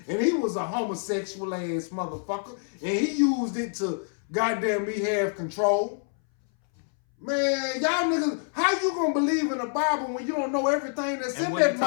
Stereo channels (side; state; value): right; silent; 60 dB below the other